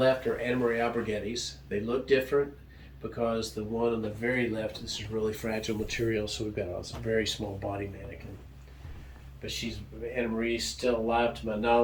are Anna Marie Alberghetti's. They look different because the one on the very left, this is really fragile material, so we've got a very small body mannequin. But Anna Marie's still alive to my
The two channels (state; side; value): identical; both; correlation 1.00